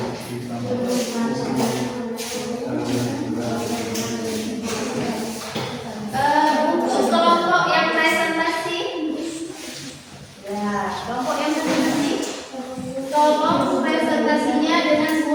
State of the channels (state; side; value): identical; both; correlation 1.00